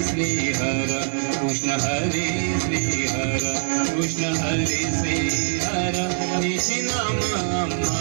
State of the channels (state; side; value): silent; left; digital silence